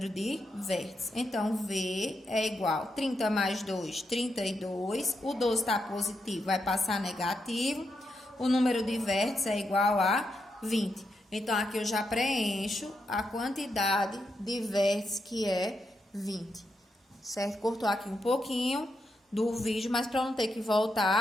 de vértices. Então, V é igual a 30 mais 2, 32. O 12 está positivo, vai passar negativo. O número de vértices é igual a 20. Então, aqui eu já preencho a quantidade de vértices, que é 20. Certo? Cortou aqui um pouquinho do vídeo, mas para não ter que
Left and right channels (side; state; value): both; normal; correlation 0.83